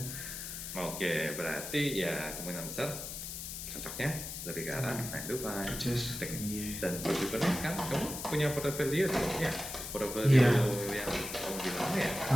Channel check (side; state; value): left; noise; hiss, 7 dB below the sound